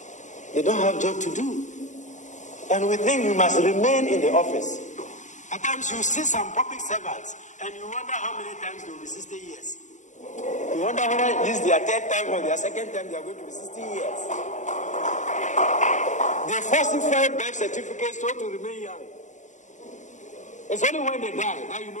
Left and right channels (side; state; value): right; late; 0.35 ms